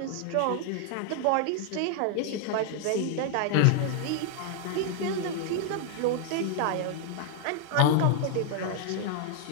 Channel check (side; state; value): both; different; correlation 0.00